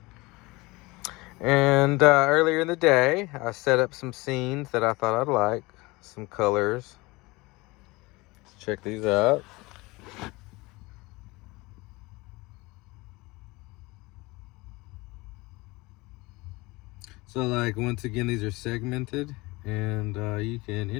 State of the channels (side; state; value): right; quieter; 23.0 dB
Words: And earlier in the day, I set up some scenes that I thought I'd like, some colors. Let's check these out. So like, once again, these are segmented, and you can